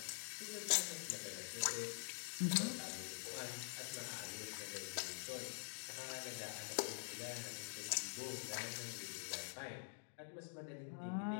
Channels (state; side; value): silent; right; digital silence